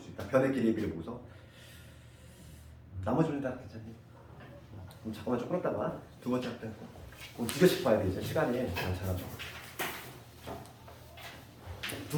수 있다. 변의 길이비를 보고서 나머지는 다 괜찮니? 그럼 잠깐만 좀 끌었다가 두 번째 학대 그럼 두 개씩 봐야 돼. 이제 시간이 많잖아.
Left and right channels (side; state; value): both; identical; correlation 1.00